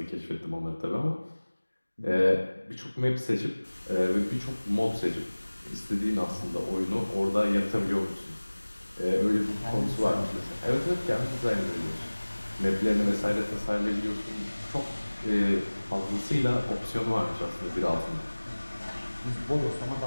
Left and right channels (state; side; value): inverted; both; correlation -1.00